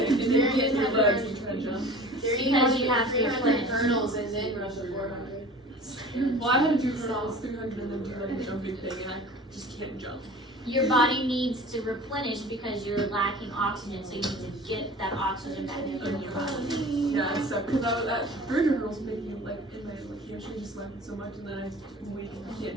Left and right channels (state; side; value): normal; both; correlation 0.41